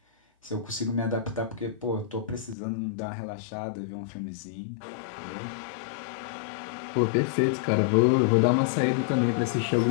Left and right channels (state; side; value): drops out; right; at 2.6 s